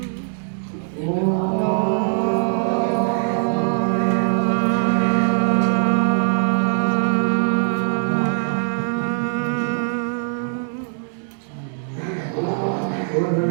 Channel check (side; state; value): left; silent; digital silence